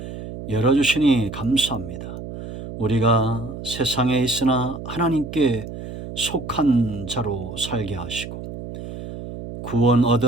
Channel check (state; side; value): noise; right; hum, 10 dB below the sound